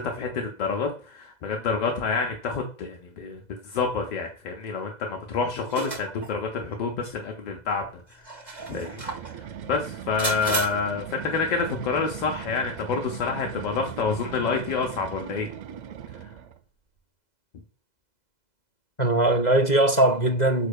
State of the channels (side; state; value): right; late; 2.0 ms